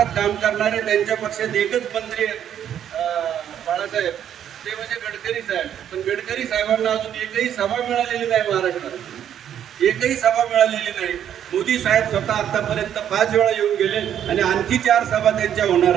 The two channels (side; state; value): left; quieter; 9.8 dB